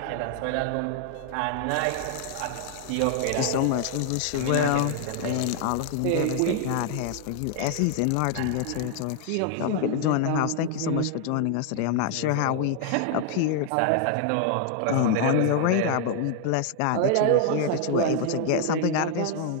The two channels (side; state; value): both; different; correlation 0.00